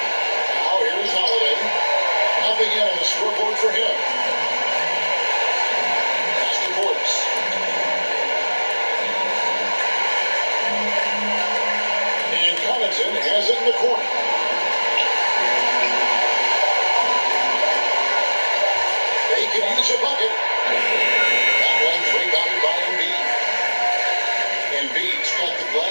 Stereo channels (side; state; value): both; inverted; correlation -1.00